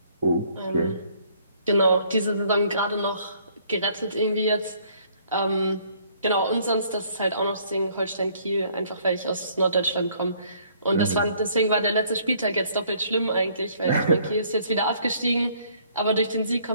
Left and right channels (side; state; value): both; inverted; correlation -0.62